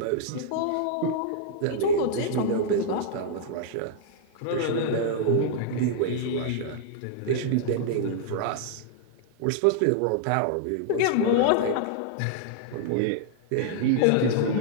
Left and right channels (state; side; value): different; both; correlation -0.01